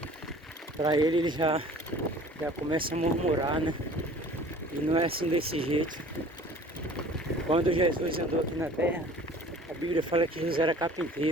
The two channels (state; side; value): normal; both; correlation 0.47